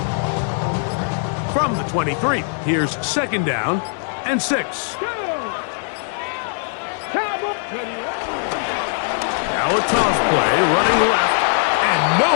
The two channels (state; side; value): silent; right; digital silence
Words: From the 23, here's second down and 6. Now a toss play, running left, and no